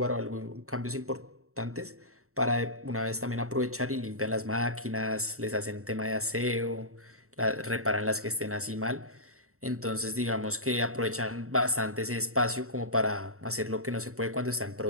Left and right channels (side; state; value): left; late; 0.64 ms